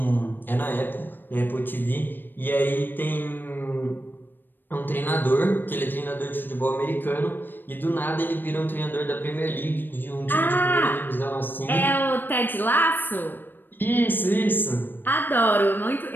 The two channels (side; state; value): right; late; 0.094 ms